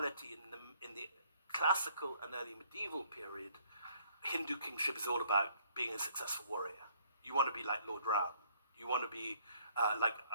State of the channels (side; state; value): both; inverted; correlation -0.62